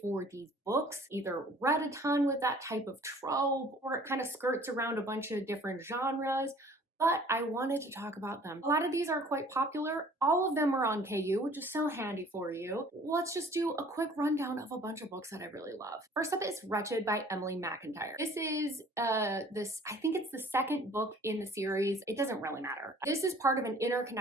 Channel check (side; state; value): both; normal; correlation 0.52